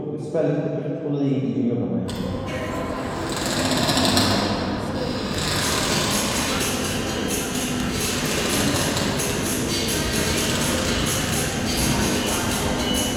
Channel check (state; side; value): identical; both; correlation 1.00